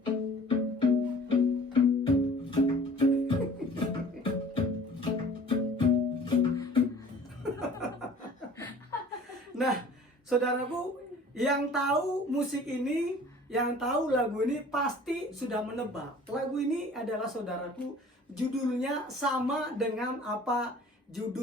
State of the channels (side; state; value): both; normal; correlation 0.48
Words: Nah, saudaraku, yang tahu musik ini, yang tahu lagu ini pasti sudah menebak. Lagu ini adalah, saudaraku, judulnya sama dengan apa